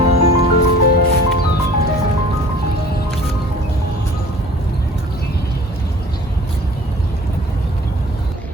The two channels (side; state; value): both; normal; correlation 0.48